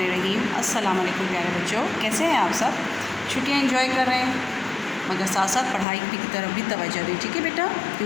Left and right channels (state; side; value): drops out; right; at 5.9 s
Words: السلام علیکم پیارے بچوں، کیسے ہیں آپ سب؟ چھٹیاں انجوائے کر رہے ہیں، مگر ساتھ ساتھ پڑھائی کی طرف بھی توجہ دیں، ٹھیک ہے بیٹا؟